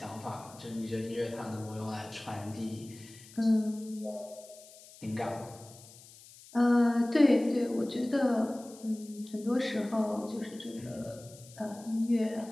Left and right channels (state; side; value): noise; left; hiss, 20 dB below the sound